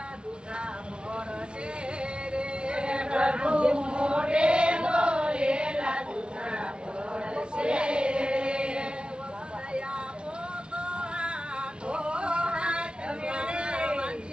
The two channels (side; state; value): left; late; 0.056 ms